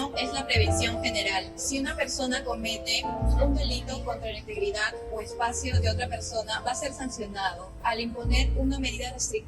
es la prevención general. Si una persona comete un delito contra la integridad o espacio de otra persona, va a ser sancionado. Al imponer una medida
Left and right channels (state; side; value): identical; both; correlation 1.00